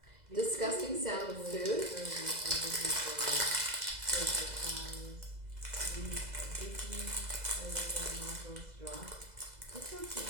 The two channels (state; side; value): late; left; 2.0 ms